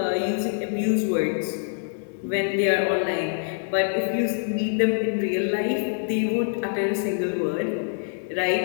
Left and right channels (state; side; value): silent; right; digital silence